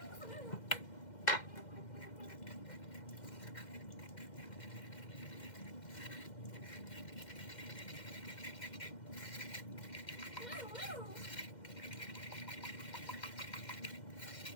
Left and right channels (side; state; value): right; late; 2.1 ms